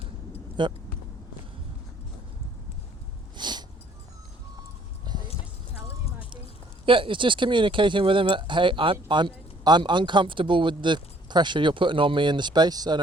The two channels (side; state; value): both; normal; correlation 0.61